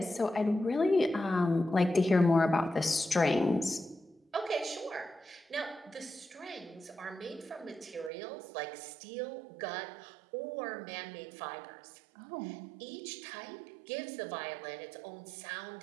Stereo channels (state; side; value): drops out; left; at 8.1 s